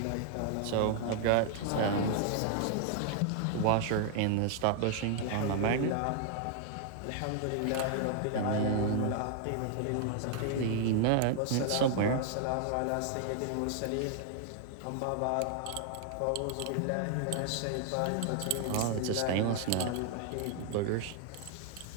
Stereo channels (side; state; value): both; different; correlation 0.00